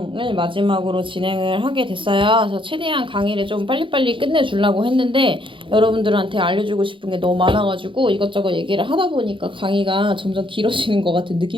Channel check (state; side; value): late; left; 0.25 ms